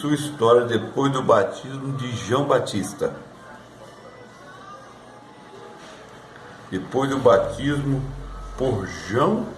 história depois do batismo de João Batista. Depois do batismo por João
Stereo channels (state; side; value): identical; both; correlation 1.00